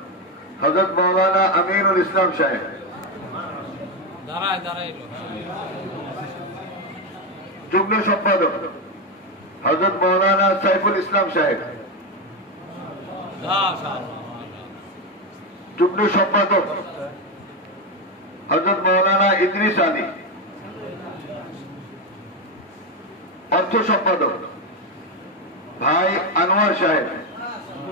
হযরত মাওলানা আমিনুল ইসলাম সাহেব, যুগ্ম সম্পাদক হযরত মাওলানা সাইফুল ইসলাম সাহেব, যুগ্ম সম্পাদক হযরত মাওলানা ইদ্রিস আলী, অর্থ সম্পাদক ভাই আনোয়ার সাহেব,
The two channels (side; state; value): both; normal; correlation 0.10